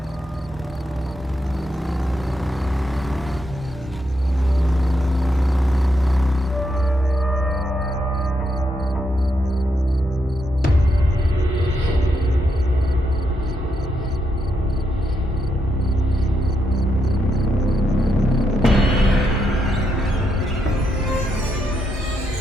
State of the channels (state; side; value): normal; both; correlation 0.81